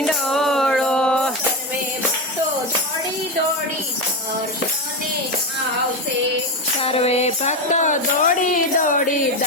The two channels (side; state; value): both; normal; correlation 0.14